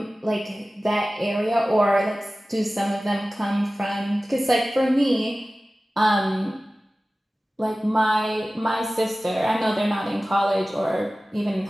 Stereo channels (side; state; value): both; normal; correlation 0.97